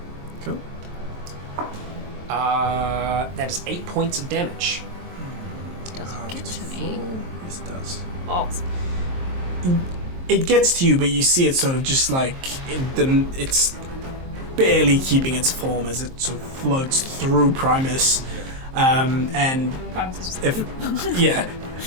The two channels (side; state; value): left; late; 23 ms